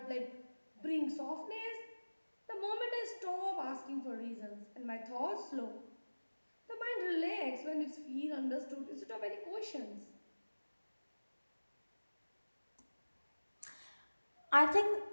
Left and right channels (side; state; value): both; inverted; correlation -1.00